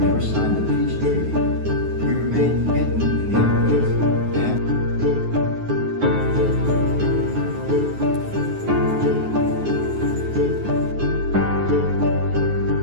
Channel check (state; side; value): late; left; 9.5 ms